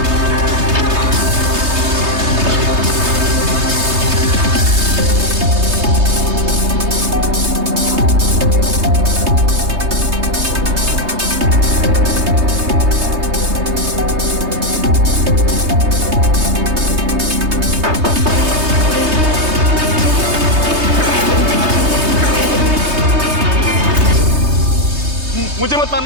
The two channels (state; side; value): late; left; 3.2 ms